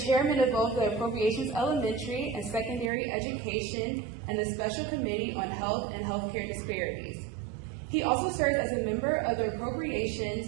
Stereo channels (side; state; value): left; drops out; at 2.9 s